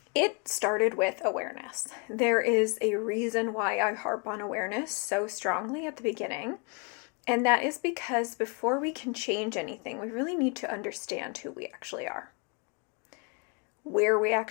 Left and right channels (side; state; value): right; quieter; 34.0 dB